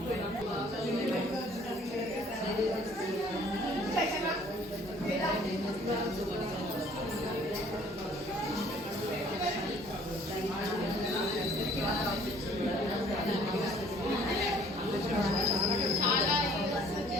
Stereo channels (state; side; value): normal; both; correlation 0.57